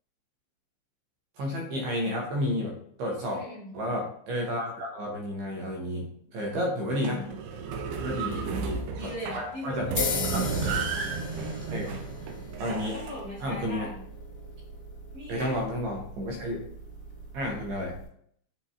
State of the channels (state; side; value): late; left; 15 ms